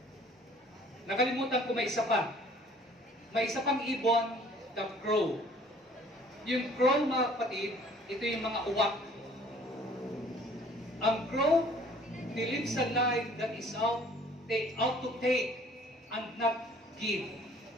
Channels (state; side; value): normal; both; correlation 0.54